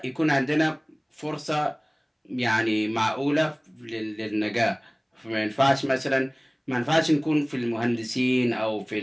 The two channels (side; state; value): both; identical; correlation 1.00